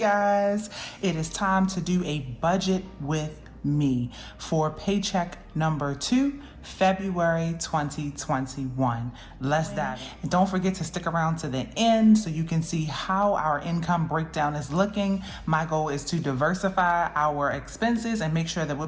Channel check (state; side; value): identical; both; correlation 1.00